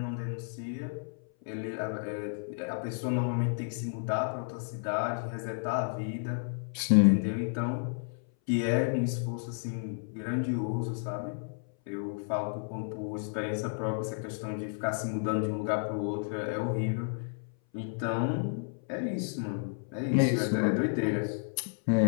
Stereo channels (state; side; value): silent; right; 57 dB below the other